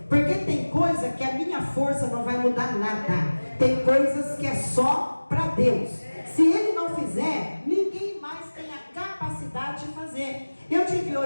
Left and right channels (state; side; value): inverted; both; correlation -1.00